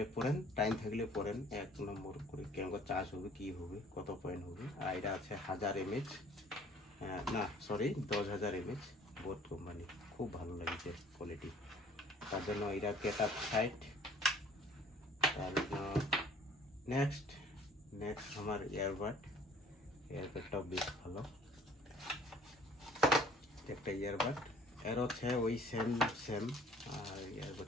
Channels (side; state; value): both; normal; correlation 0.54